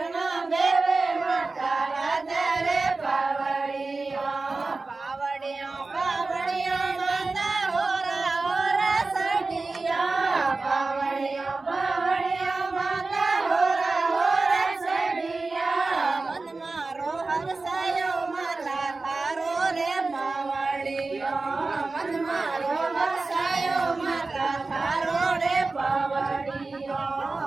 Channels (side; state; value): left; quieter; 3.6 dB